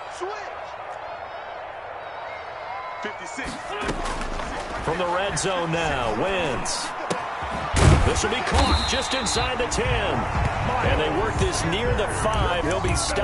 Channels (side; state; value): both; identical; correlation 1.00